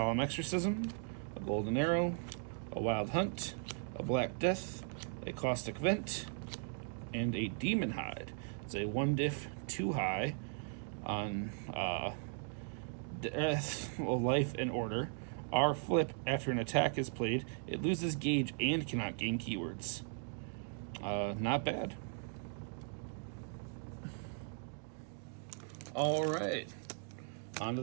Exorcism, a Golden Arrow, a Wild Hunt, a Black Death, a Caustic Vent, and a Demon Hide. It's a 1-diff, 2 high on Death, Life, and Order. R flip, after an attack is played, it loses gauge and cannot gain keywords. Not bad. Alright, on to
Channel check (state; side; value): silent; left; 52 dB below the other